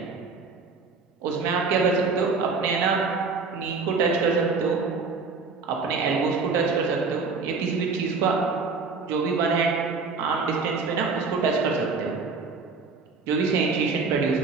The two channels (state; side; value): quieter; left; 4.5 dB